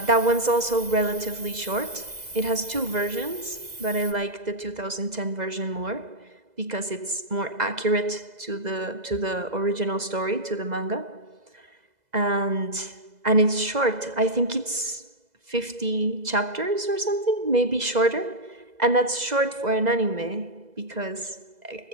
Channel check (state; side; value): late; left; 2.0 ms